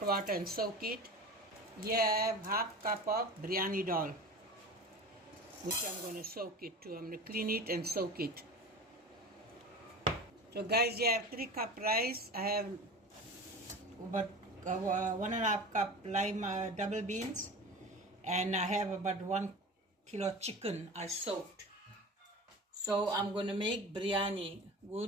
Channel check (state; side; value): normal; both; correlation 0.34